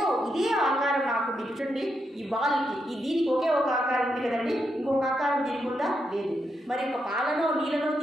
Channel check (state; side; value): normal; both; correlation 0.82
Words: ఇదే ఆకారం నాకు చూడండి, ఈ బాల్కి దీనికి ఒకే ఒక ఆకారం ఉంది కదండి, ఇంకొక ఆకారం దీనికి ఉందా? లేదు. మరి ఒక పాలనో నీళ్ళనో